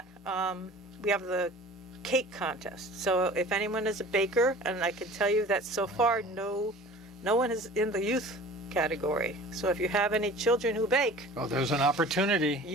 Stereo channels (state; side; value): normal; both; correlation 0.43